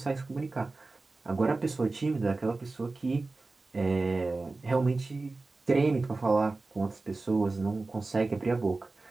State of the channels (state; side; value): quieter; left; 3.5 dB